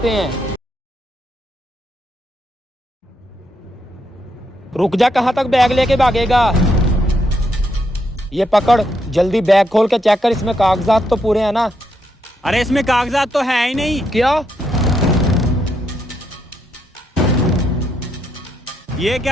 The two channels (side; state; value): both; normal; correlation 0.78